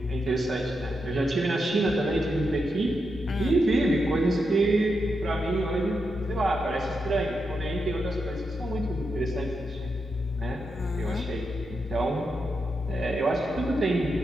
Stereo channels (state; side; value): normal; both; correlation 0.85